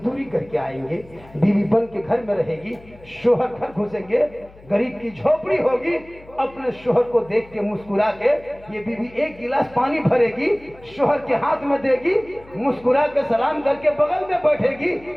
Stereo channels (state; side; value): noise; left; hum, 23 dB below the sound